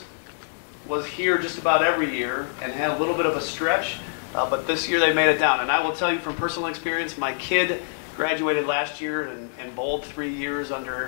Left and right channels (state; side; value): silent; right; digital silence